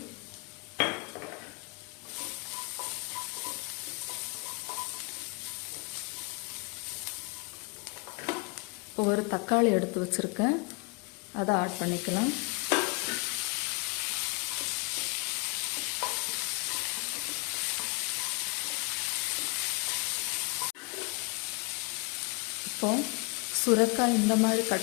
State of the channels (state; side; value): quieter; right; 28.5 dB